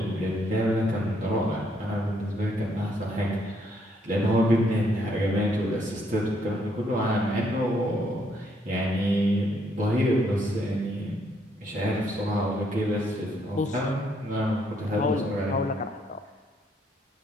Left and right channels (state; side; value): normal; both; correlation 0.71